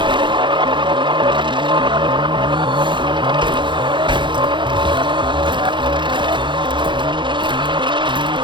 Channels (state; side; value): late; left; 0.23 ms